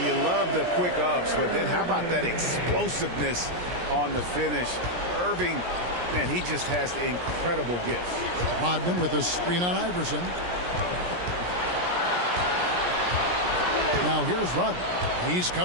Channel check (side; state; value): left; late; 17 ms